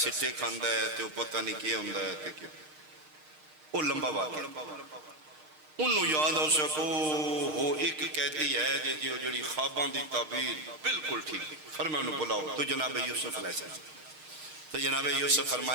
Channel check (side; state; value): left; late; 6.5 ms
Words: سٹے کھاندا ہے تے او پتہ نہیں کی ہوندا ہے تے کہ او لمبا واقعہ انہوں یاد ہو سکو وہ ایک قیدی ہے جو جڑی خواباں دی تعبیر بالکل ٹھیک فرمایا انہوں بلاؤ تو جناب یوسف علیہ السلام تو جناب یوسف